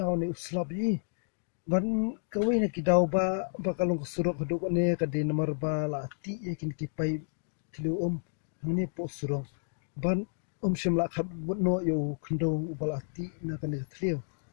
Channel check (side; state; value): right; silent; digital silence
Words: ni uslap yi. Ban kawin nak kidau ba kalong kesurung keduk ni kadi nomor bala ti ya kini kipai tilu hang ni po surung. Ban shimla khat but no yo kendo bala ti na kan tilu.